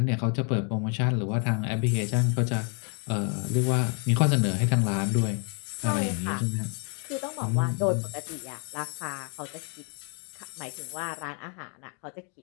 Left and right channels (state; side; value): quieter; right; 38.8 dB